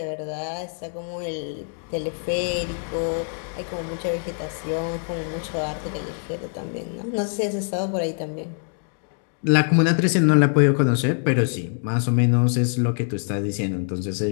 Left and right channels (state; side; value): silent; right; 58 dB below the other